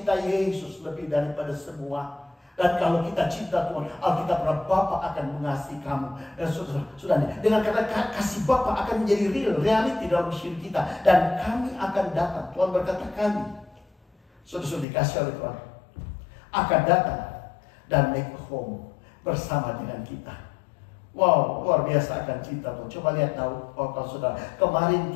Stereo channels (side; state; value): right; drops out; at 14.9 s